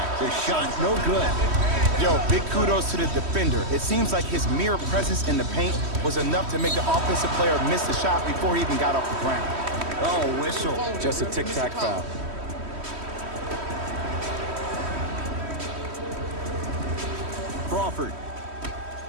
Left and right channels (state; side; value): late; left; 3.1 ms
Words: The shot no good. Yo, big kudos to the defender. It seems like his mere presence in the paint was enough to make the offensive player miss the shot before he even got off the ground. Oh, whistle. Just a tic-tac foul. Crawford.